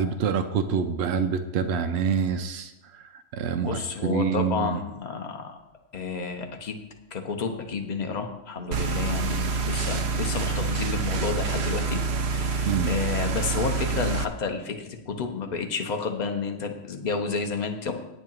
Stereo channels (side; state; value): left; late; 3.1 ms